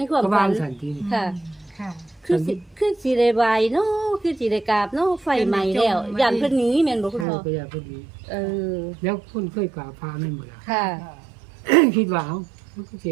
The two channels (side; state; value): left; drops out; at 7.2 s